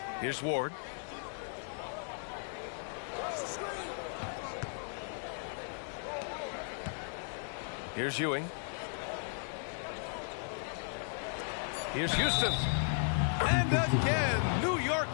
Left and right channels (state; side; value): silent; right; 54 dB below the other